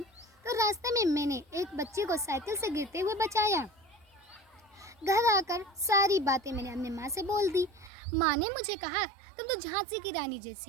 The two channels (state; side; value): drops out; left; at 7.9 s